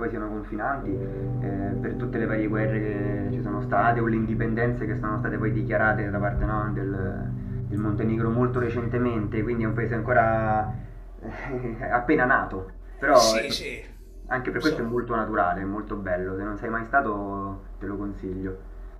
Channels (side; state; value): both; identical; correlation 1.00